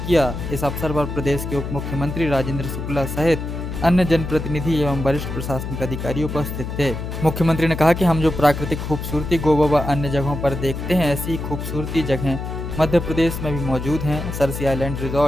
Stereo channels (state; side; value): noise; left; hum, 6 dB below the sound